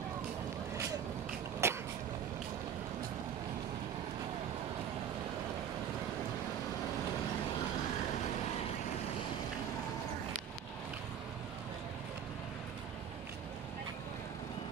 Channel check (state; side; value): quieter; left; 8.5 dB